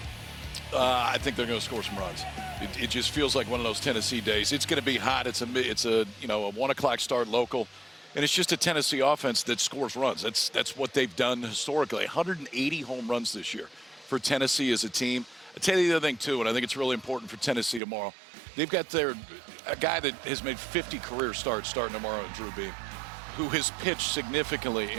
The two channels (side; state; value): left; drops out; at 17.8 s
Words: I think they're going to score some runs. It just feels like one of those Tennessee days. It's going to be hot. It's a 1 o'clock start local. And it's just a Tennessee offense that scores runs. That's what they've done historically. 180 home runs this year for Tennessee as a team. I'll tell you the other thing, too, and I think it's really important for Tennessee tomorrow. They've got a guy that has made 50 career starts starting tomorrow, Drew Beam, who has pitched significantly